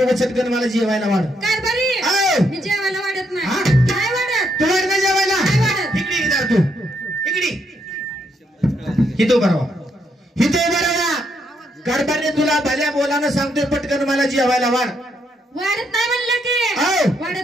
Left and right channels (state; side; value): normal; both; correlation 0.76